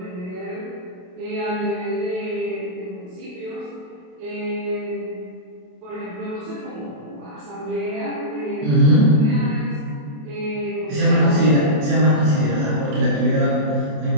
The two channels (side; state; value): left; late; 27 ms